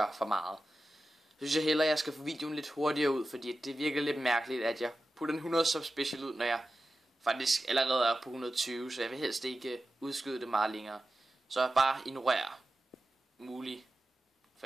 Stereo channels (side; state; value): both; normal; correlation 0.93